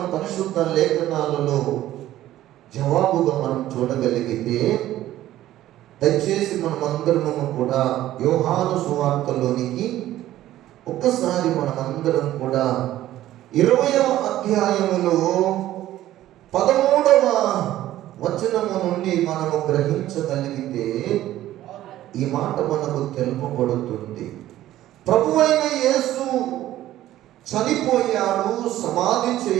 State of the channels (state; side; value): quieter; left; 14.0 dB